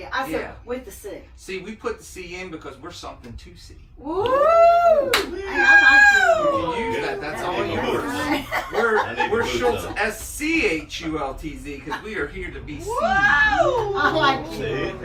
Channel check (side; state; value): both; identical; correlation 1.00